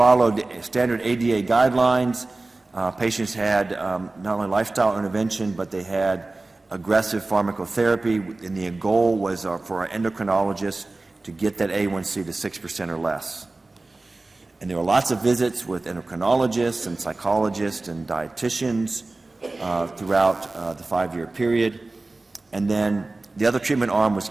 standard ADA guidelines. Patients had not only lifestyle intervention, but they had aggressive pharmacotherapy, and the goal was for our endocrinologists to get that A1C to 6% or less. And there were lots of visits with endocrinologists and psychologists and dietitians throughout the 5-year period. And then the other treatment arm was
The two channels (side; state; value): left; quieter; 3.2 dB